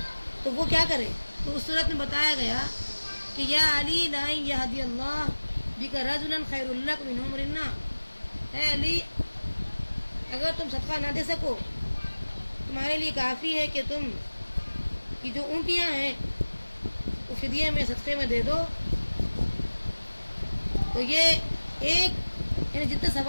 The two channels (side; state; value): both; inverted; correlation -1.00